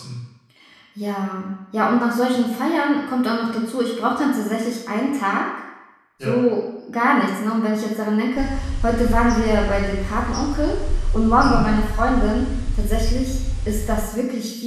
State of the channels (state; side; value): identical; both; correlation 1.00